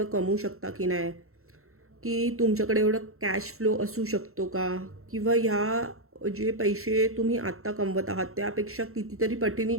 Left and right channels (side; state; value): left; late; 0.63 ms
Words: कमवू शकता की नाही, की तुमच्याकडे एवढं कॅश फ्लो असू शकतो का, किंवा ह्या जे पैसे तुम्ही आत्ता कमवत आहात त्यापेक्षा कितीतरी पटीने